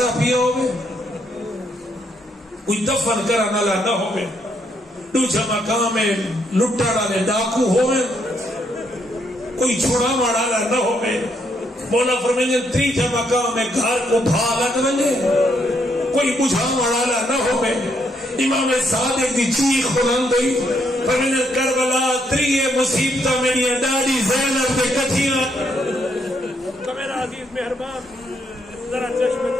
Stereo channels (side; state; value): both; normal; correlation 0.75